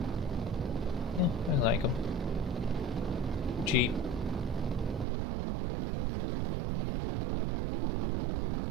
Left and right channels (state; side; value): drops out; left; at 5.1 s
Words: yeah, I like them. Cheap. Cause me too many issues.